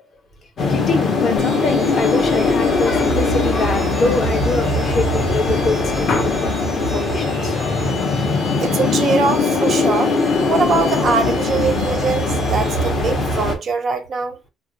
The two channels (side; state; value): both; normal; correlation 0.65